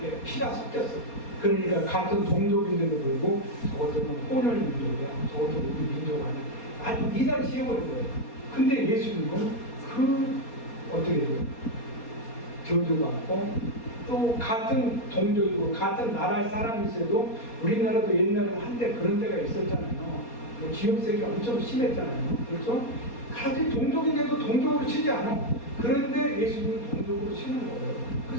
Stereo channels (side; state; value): right; late; 4.2 ms